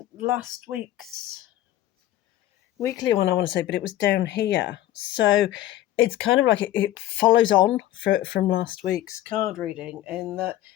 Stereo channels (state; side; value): quieter; right; 13.9 dB